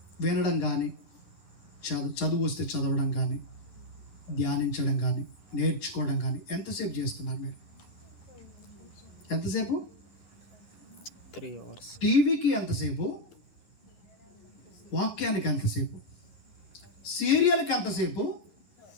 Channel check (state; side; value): late; right; 11 ms